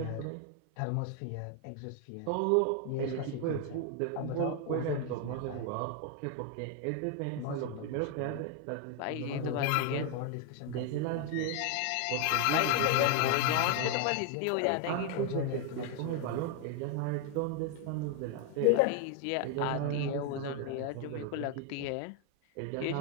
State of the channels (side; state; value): both; different; correlation 0.01